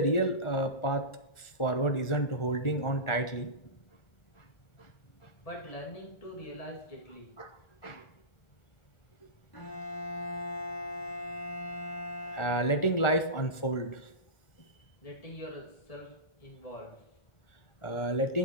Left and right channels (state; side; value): late; right; 1.4 ms